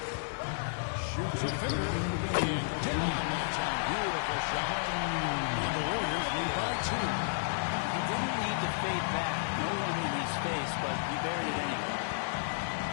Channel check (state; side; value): silent; right; digital silence